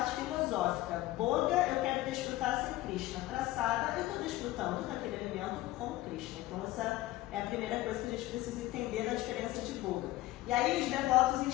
filosófica. Boga, eu quero desfrutar sem Krishna. Prasada, eu estou desfrutando daquele alimento com Krishna. Então essa é a primeira coisa que a gente precisa entender da diferença de boga. E aí os devotos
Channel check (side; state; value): right; quieter; 16.9 dB